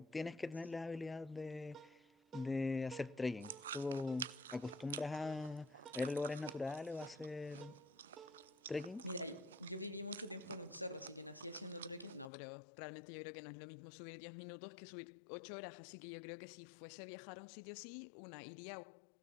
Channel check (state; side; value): drops out; right; at 12.3 s